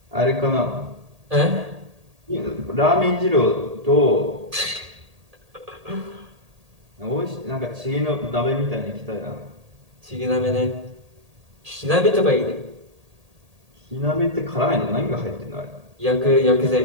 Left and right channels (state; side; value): late; left; 1.8 ms